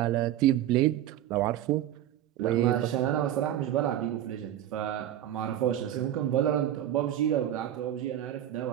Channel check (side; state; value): left; quieter; 11.9 dB